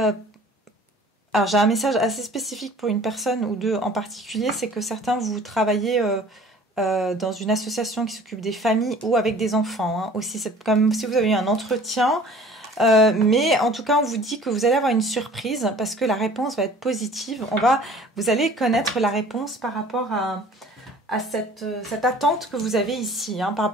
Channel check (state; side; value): normal; both; correlation 0.48